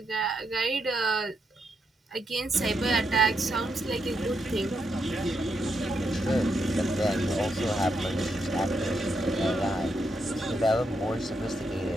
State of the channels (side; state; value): both; normal; correlation 0.81